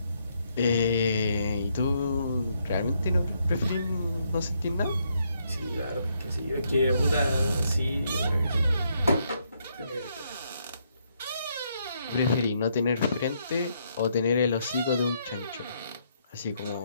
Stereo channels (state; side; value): inverted; both; correlation -0.75